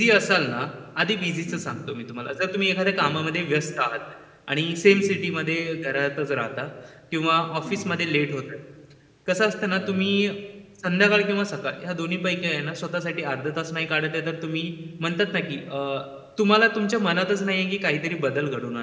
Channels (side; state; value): both; identical; correlation 1.00